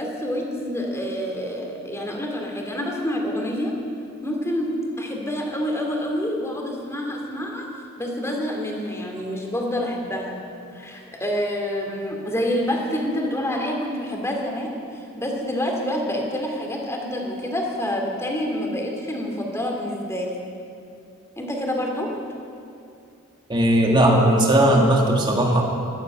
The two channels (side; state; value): both; normal; correlation 0.60